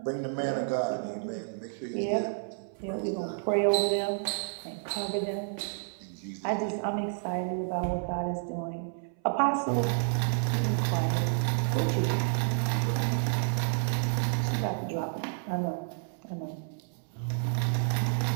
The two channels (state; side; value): silent; left; 58 dB below the other